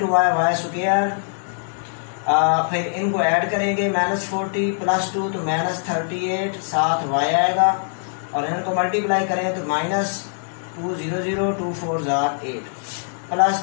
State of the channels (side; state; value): right; silent; 64 dB below the other